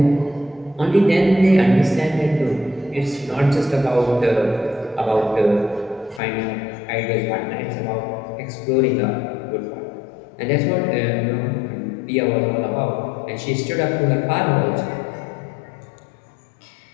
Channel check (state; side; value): drops out; right; at 6.2 s